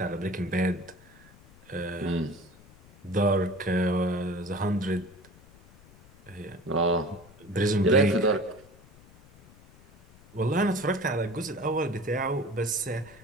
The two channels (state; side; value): noise; left; rumble, 24 dB below the sound